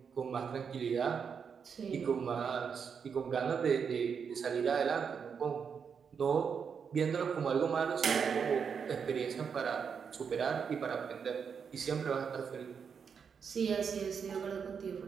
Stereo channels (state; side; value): quieter; left; 6.6 dB